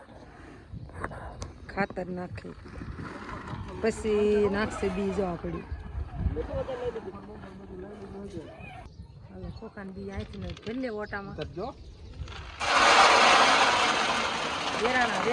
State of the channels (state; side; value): identical; both; correlation 1.00